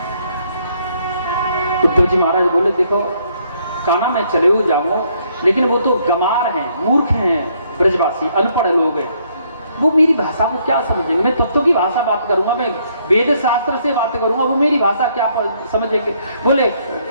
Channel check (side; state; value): both; inverted; correlation -0.69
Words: उद्धव जी महाराज बोले देखो कान्हा मैं चले हुए जाऊंगा, लेकिन वो तो गमार हैं, मूर्ख हैं, ब्रजवासी अनपढ़ लोग हैं, वो मेरी भाषा को क्या समझेंगे। मैं तत्व की भाषा बात करूंगा, मैं वेद शास्त्र से बात करूंगा, वो मेरी भाषा क्या समझेंगे। बोले